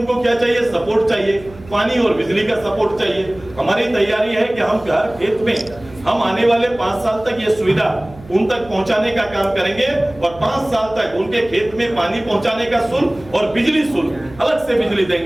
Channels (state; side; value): noise; right; hum, 20 dB below the sound